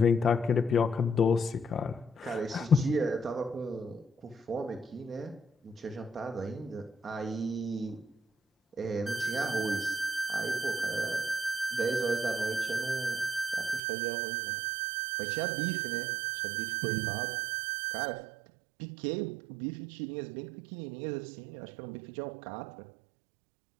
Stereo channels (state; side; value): drops out; left; at 13.8 s